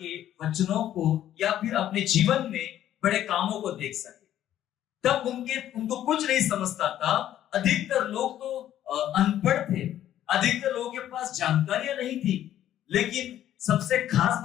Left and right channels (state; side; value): quieter; right; 11.7 dB